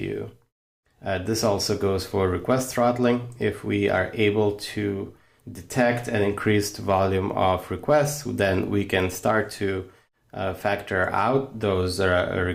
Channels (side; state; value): both; identical; correlation 1.00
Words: you. This also goes for request throttling. If we are able to detect an increased volume of requests, then we can start to factor out those